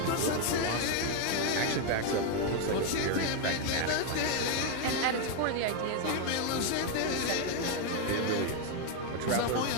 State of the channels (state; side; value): different; both; correlation 0.01